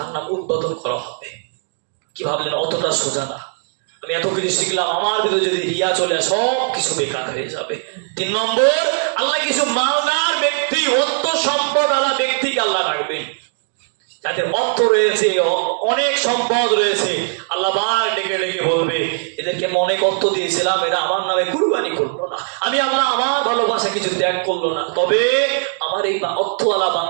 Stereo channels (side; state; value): left; silent; digital silence